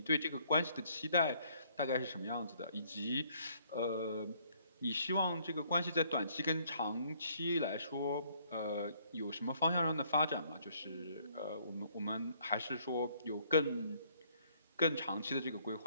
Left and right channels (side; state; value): both; inverted; correlation -0.65